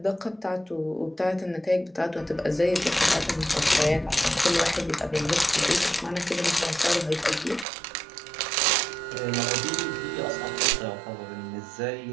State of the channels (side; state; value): left; drops out; at 7.7 s